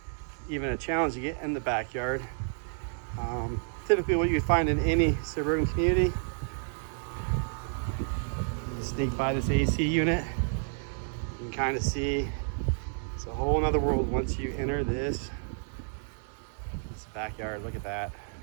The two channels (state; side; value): silent; left; 57 dB below the other